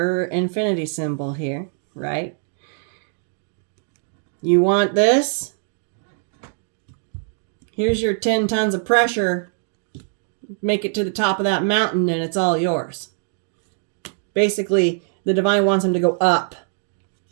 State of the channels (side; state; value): left; silent; 57 dB below the other